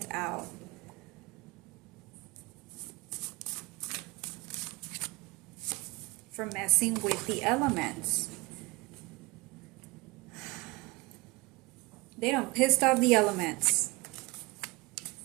out. For messing with the elements. They done pissed off the elements.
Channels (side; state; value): left; quieter; 24.6 dB